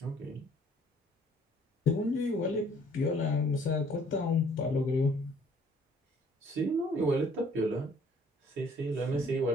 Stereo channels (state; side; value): normal; both; correlation 0.59